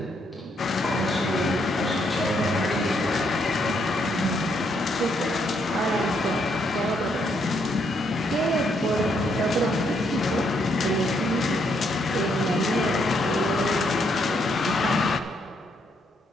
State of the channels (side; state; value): both; normal; correlation 0.74